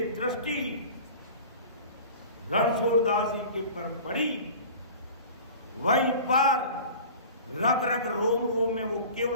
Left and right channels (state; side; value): inverted; both; correlation -0.40